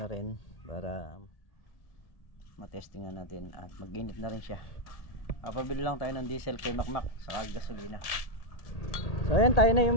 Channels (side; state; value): right; late; 1.8 ms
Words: rin para matestingan natin at mag-init na rin siya. Pabili lang tayo ng diesel kay Makmak saka gasolina. So ayan, tayo na yung